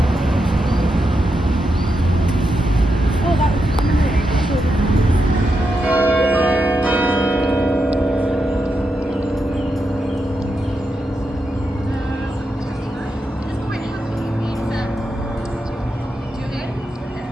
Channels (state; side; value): normal; both; correlation 0.85